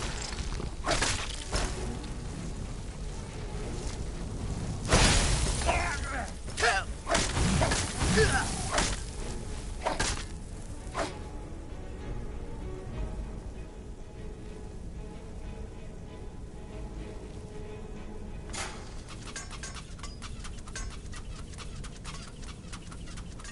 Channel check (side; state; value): both; identical; correlation 1.00